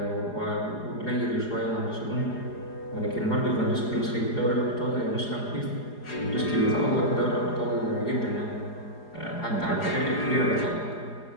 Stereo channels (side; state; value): right; late; 4.8 ms